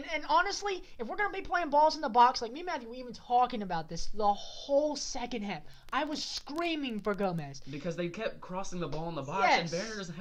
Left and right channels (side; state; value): both; identical; correlation 1.00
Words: honestly, if we're going to be playing balls in the box, like me and Matthew were even talking about this the whole second half, I was screaming for Gomez. Because they kept crossing the ball in the box, and Werner doesn't